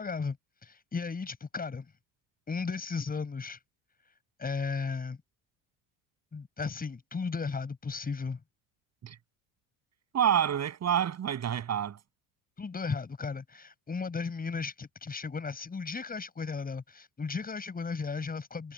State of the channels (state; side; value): normal; both; correlation 0.21